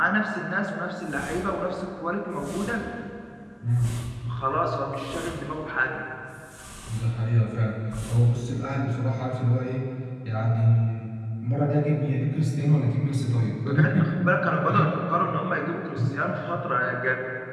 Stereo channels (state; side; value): identical; both; correlation 1.00